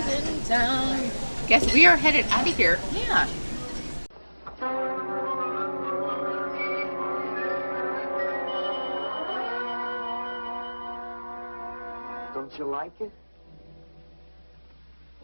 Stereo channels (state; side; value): inverted; both; correlation -1.00